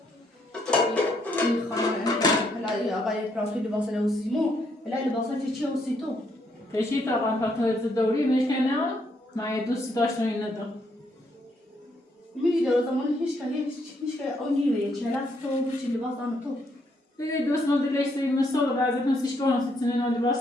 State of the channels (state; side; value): normal; both; correlation 0.73